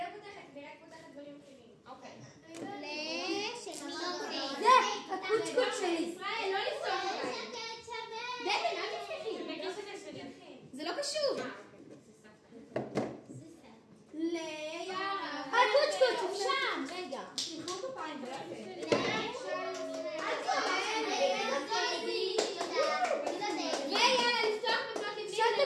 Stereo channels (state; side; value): identical; both; correlation 1.00